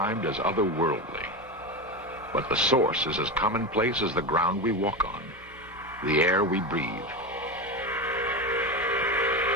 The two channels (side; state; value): both; normal; correlation 0.18